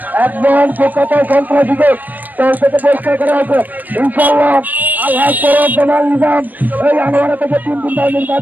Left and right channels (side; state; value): left; late; 0.085 ms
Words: একজন কলকাতায় সন্ত্রাসীকে দল থেকে পরিষ্কার করা হয়েছে ইনশাআল্লাহ আল্লাহ করব জামাল নিজাম এই আনোয়ারা থেকে 3 দিন ধরে